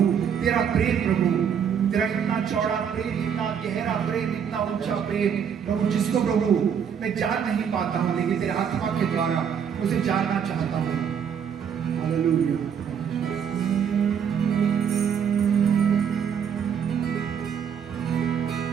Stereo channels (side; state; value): left; quieter; 7.7 dB